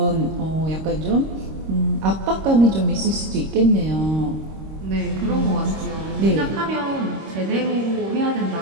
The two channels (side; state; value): left; late; 26 ms